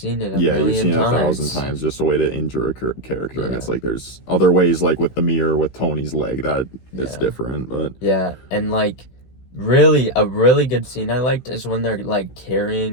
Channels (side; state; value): right; late; 16 ms